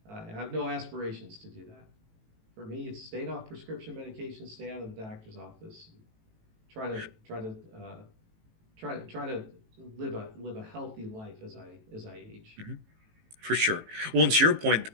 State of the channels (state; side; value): late; left; 18 ms